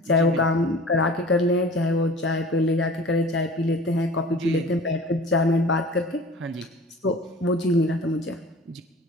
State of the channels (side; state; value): both; normal; correlation 0.42